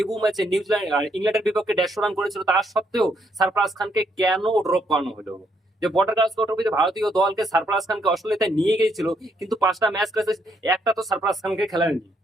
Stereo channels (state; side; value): normal; both; correlation 0.73